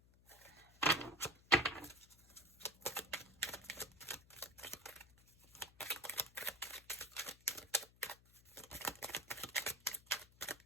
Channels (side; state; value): left; noise; hum, 26 dB below the sound